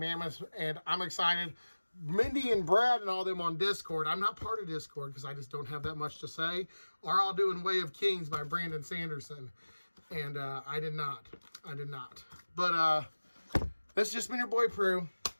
and I'm excited. Mindy and Brad and all them on Discord. I'm not part of Discord because I just don't have that much to say. Are all doing Way of Kings by Brandon Sanderson. And I did not. But this has just been your boy Prue.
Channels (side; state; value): both; inverted; correlation -1.00